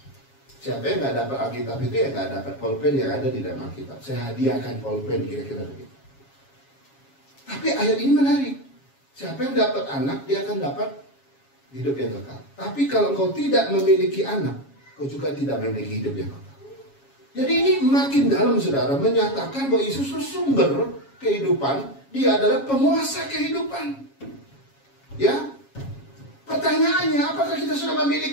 Siapa yang nggak dapat Alkitab itu, ya nggak dapat pulpen yang ada di dalam Alkitab. Saya hadiahkan pulpen, kira-kira begitu. Tapi ayat ini menarik. Siapa yang dapat anak, dia akan dapat hidup yang kekal. Tapi kalau kau tidak memiliki anak, kau juga tidak memiliki hidup yang kekal. Jadi ini makin dalam, saudara, menyatakan bahwa Yesus itu sumber kehidupan. Dia adalah penguasa kehidupan. Ya, pertanyaannya, apakah kita sudah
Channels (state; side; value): late; right; 7.3 ms